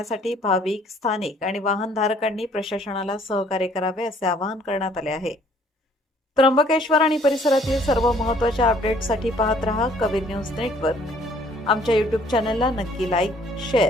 भाविक, स्थानिक आणि वाहनधारकांनी प्रशासनाला सहकार्य करावे असे आवाहन करण्यात आले आहे. त्र्यंबकेश्वर आणि परिसरातील सर्व महत्त्वाच्या अपडेट्ससाठी पाहत रहा कबीर न्यूज नेटवर्क. आमच्या YouTube चॅनलला नक्की लाईक,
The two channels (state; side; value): normal; both; correlation 0.59